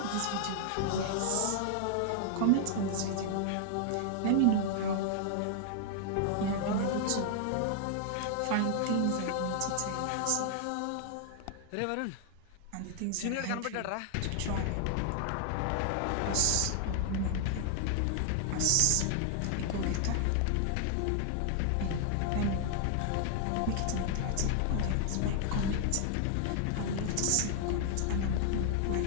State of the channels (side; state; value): both; different; correlation 0.00